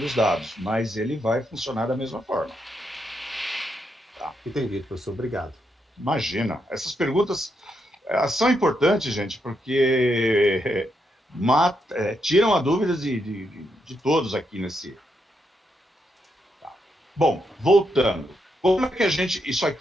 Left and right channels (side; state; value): both; normal; correlation 0.80